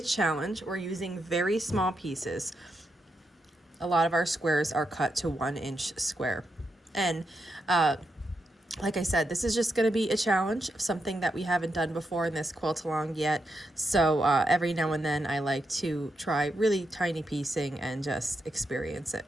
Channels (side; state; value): both; normal; correlation 0.84